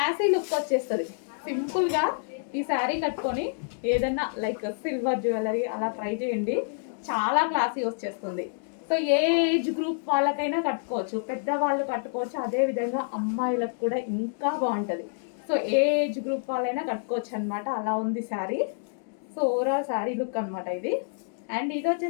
లుక్ వచ్చేస్తుంది. సింపుల్గా ఈ శారీ కట్టుకొని ఏదన్నా లైక్ సిల్వర్ జ్యువెలరీ అలా ట్రై చేయండి, చాలా క్లాసీ వచ్చేస్తుంది. సో ఏ ఏజ్ గ్రూప్ వాళ్ళకైనా కట్టుకోవచ్చు, పెద్దవాళ్ళు కట్టుకోవచ్చు, అదేవిధంగా అమ్మాయిలకు కూడా ఇంకా బాగుంటుంది. సో ఏ ఏజ్ గ్రూప్ వాళ్ళైనా కట్టుకోవచ్చు అనమాట, అలా ఉంది sari. So overall sari look అనమాట ఇది. అండ్ ఇది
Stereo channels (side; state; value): right; silent; digital silence